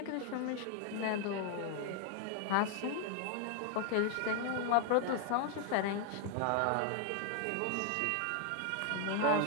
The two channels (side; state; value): both; different; correlation 0.00